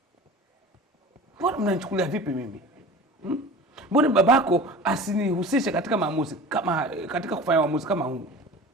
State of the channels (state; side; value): normal; both; correlation 0.38